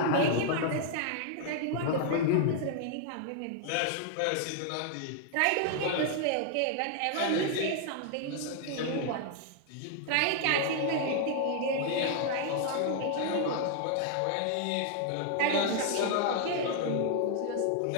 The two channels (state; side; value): different; both; correlation 0.00